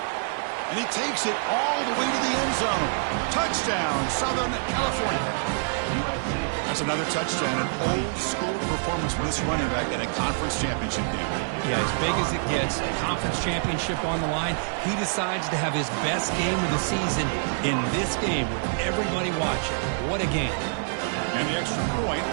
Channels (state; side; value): silent; left; digital silence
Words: And he takes it all the way to the end zone. Touchdown, Southern California. That's another touchdown, an old-school performance for this running back in a conference championship game. Yeah, as big as it gets, a conference championship on the line, he decides to have his best game of the season in this game with everybody watching. What a game. And the extra point